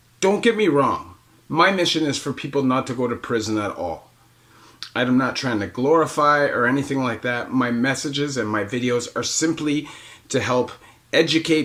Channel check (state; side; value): identical; both; correlation 1.00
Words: don't get me wrong. My mission is for people not to go to prison at all. I'm not trying to glorify or anything like that. My messages and my videos are simply to help